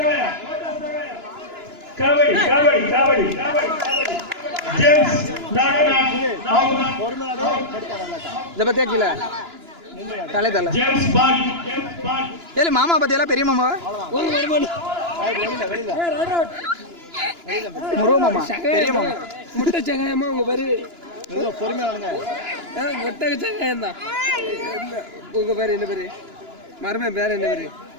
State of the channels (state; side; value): late; left; 2.9 ms